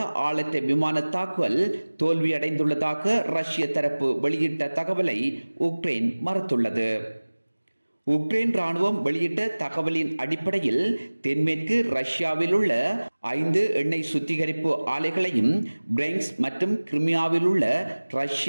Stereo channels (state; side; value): inverted; both; correlation -1.00